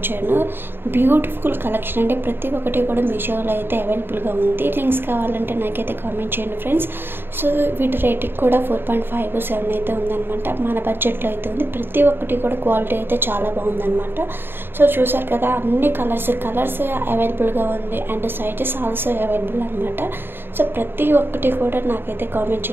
బ్యూటిఫుల్ కలెక్షన్ అంటే ప్రతి ఒక్కటి కూడా మీషోలో అయితే అవైలబుల్ గా ఉంది। లింక్స్ కావాలంటే నాకైతే కామెంట్ చేయండి ఫ్రెండ్స్। సో వీటి రేటింగ్ కూడా 4.57 అయితే ఉందన్నమాట। మన బడ్జెట్ లో అయితే ఉంది। ప్రతి ఒక్కటి కూడా క్వాలిటీ అయితే చాలా బాగుందన్నమాట। సో చూశారు కదా అన్ని కలర్స్ అవైలబుల్ గా ఉంది అండ్ సైజెస్ ఆల్సో అవైలబుల్ అన్నమాట। సో ప్రతి ఒక్కటి కూడా నాకైతే కామెంట్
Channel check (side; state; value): left; late; 0.10 ms